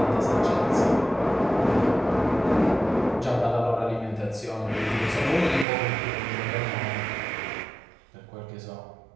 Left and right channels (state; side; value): drops out; left; at 5.7 s